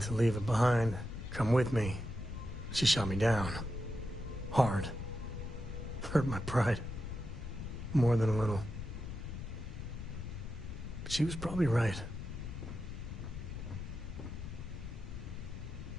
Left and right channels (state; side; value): noise; left; rumble, 8 dB below the sound